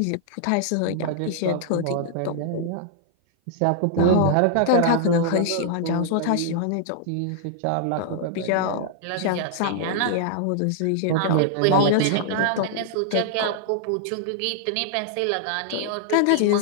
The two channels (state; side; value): different; both; correlation -0.01